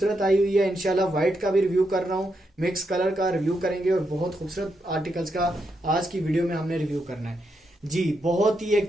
आई हुई है। इंशाल्लाह व्हाइट का भी रिव्यू कर रहा हूँ, मिक्स कलर का रिव्यू करेंगे, और बहुत खूबसूरत आर्टिकल्स का आज की वीडियो में हमने रिव्यू करना है जी। बहुत ही एक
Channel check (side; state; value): both; normal; correlation 0.82